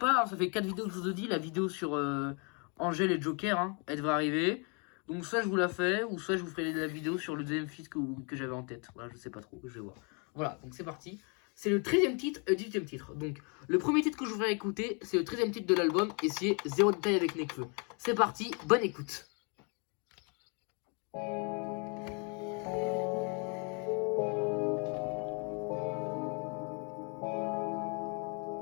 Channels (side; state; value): right; quieter; 35.1 dB